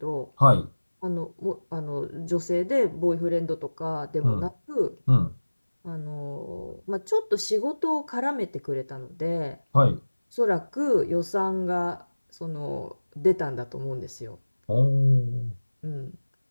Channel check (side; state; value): both; inverted; correlation -1.00